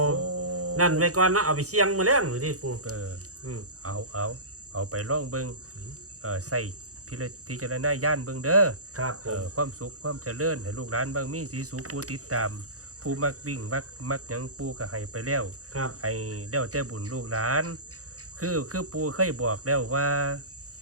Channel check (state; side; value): late; left; 0.66 ms